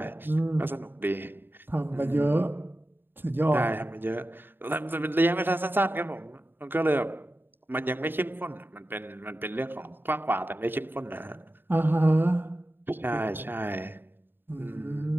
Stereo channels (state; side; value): late; left; 0.097 ms